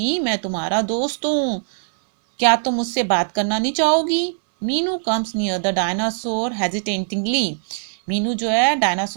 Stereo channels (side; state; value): left; silent; 65 dB below the other